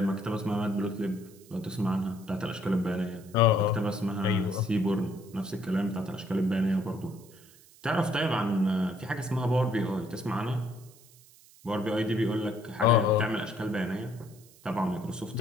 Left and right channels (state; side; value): noise; right; hiss, 25 dB below the sound